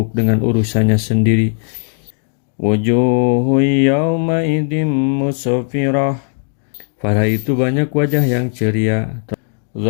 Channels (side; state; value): right; silent; 56 dB below the other